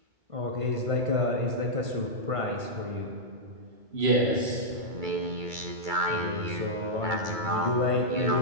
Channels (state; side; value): late; left; 2.2 ms